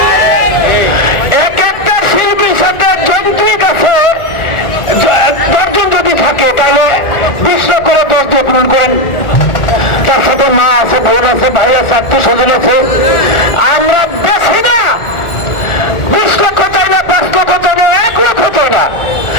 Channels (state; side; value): late; right; 1.4 ms